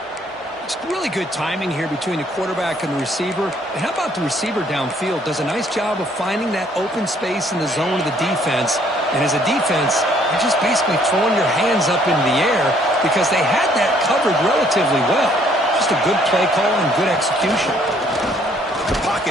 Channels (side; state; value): both; normal; correlation 0.64